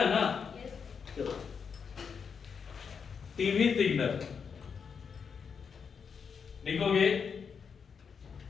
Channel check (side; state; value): right; quieter; 6.3 dB